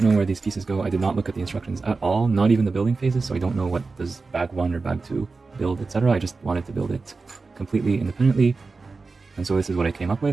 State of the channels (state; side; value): quieter; left; 4.1 dB